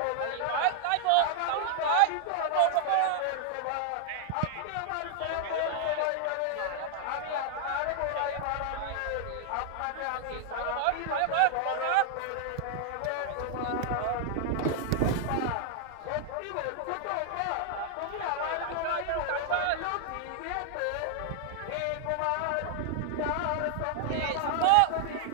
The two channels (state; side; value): different; both; correlation 0.00